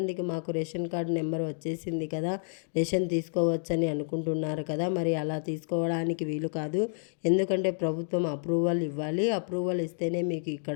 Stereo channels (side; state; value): right; silent; digital silence